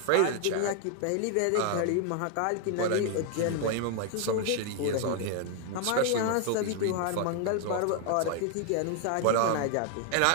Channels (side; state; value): both; different; correlation 0.00